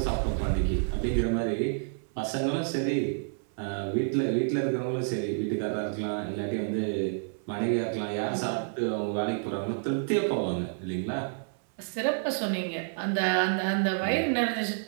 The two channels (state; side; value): silent; left; 58 dB below the other